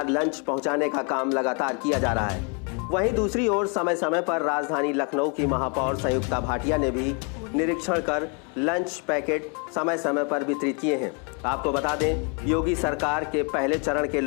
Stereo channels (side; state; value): right; quieter; 36.2 dB